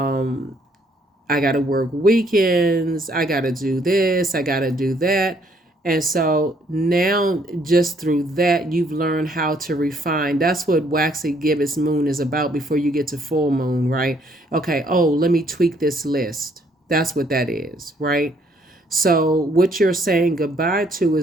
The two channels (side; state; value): both; normal; correlation 0.67